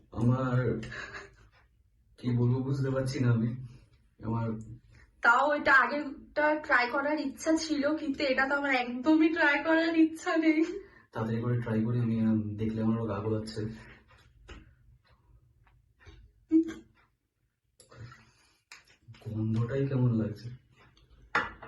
আমার কি বলবো বুঝতে পারছি না আমি। আমার তাও এটা আগেরটা ট্রাই করার ইচ্ছা ছিল, কিন্তু এটা তো আমার একদমই ট্রাই করার ইচ্ছা নেই। তাড়াতাড়ি করে ট্রাই করি, আমি দেখলে আমারও গা গোলাচ্ছে। গন্ধটাই কেমন লাগছে।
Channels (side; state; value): both; identical; correlation 1.00